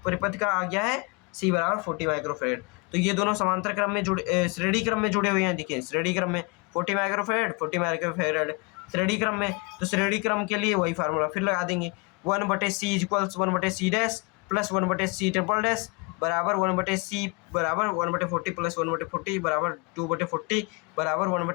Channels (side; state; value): right; quieter; 30.0 dB